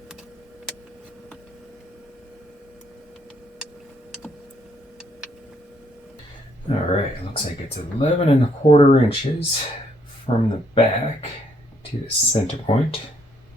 Alright, looks like it's 11 1/4 inches from the back to the center point.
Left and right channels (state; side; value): normal; both; correlation 0.70